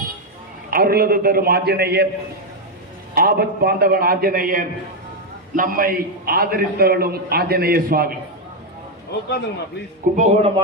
அருளது தரும் ஆஞ்சநேயர், ஆபத் பாந்தவன் ஆஞ்சநேயர், நம்மை ஆதரித்தவளும் ஆஞ்சநேய சுவாமி. கும்பகோணம்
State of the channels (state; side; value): normal; both; correlation 0.03